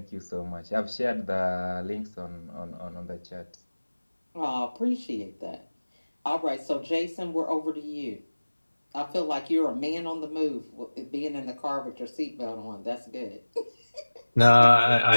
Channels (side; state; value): both; inverted; correlation -1.00